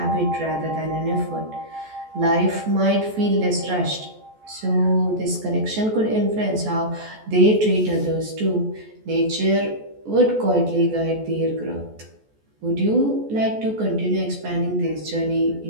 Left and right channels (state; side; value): late; left; 14 ms